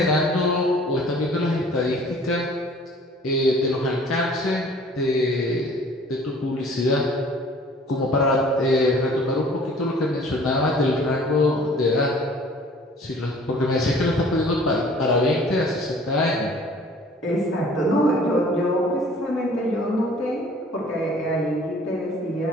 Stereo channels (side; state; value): both; normal; correlation 0.51